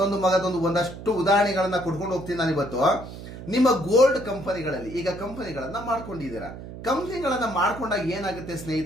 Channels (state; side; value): noise; right; hum, 12 dB below the sound